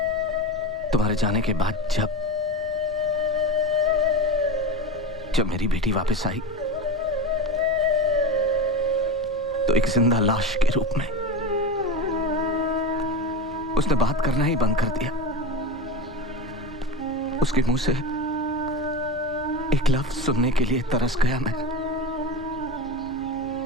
तुम्हारे जाने के बाद जब मेरी बेटी वापस आई तो एक जिंदा लाश के रूप में उसने बात करना ही बंद कर दिया। उसके मुंह से एक लफ्ज सुनने के लिए तरस गया मैं।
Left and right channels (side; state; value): right; noise; rumble, 20 dB below the sound